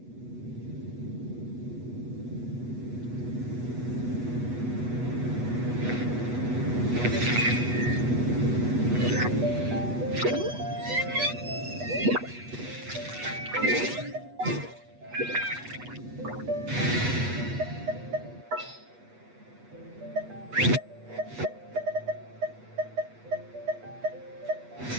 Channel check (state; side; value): late; left; 8.2 ms